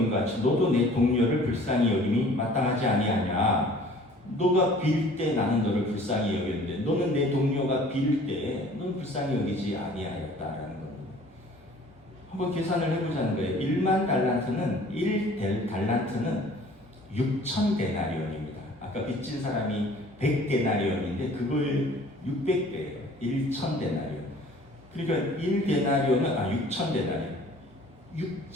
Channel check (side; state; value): both; normal; correlation 0.50